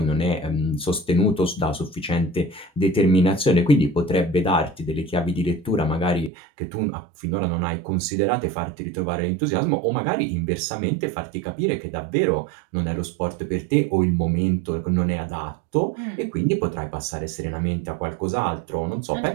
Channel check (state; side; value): drops out; left; at 6.3 s